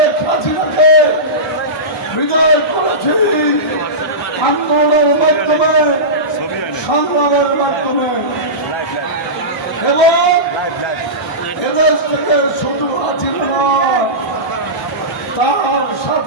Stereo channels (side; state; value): both; normal; correlation -0.18